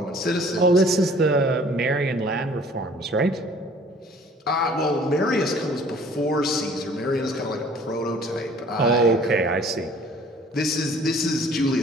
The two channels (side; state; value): both; normal; correlation 0.53